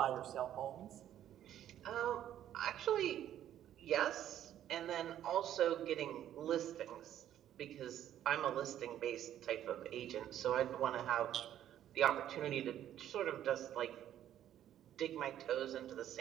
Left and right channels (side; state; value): left; quieter; 11.3 dB